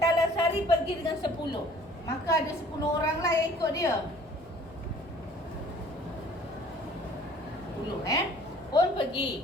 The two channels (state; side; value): normal; both; correlation 0.53